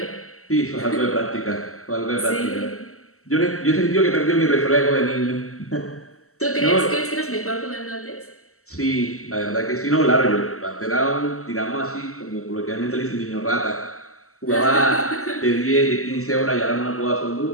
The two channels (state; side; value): late; right; 0.63 ms